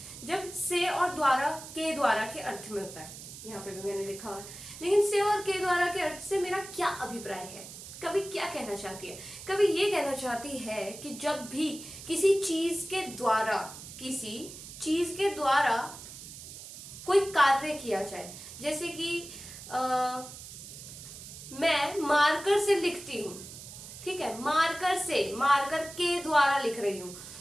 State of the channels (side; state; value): right; noise; hiss, 13 dB below the sound